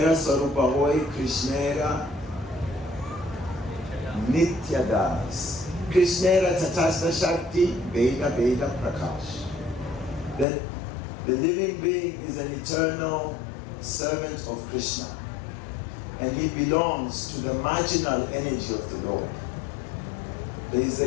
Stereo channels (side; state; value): right; drops out; at 10.5 s